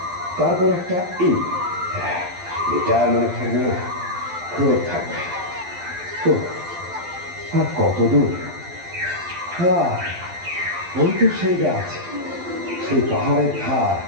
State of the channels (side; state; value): left; late; 12 ms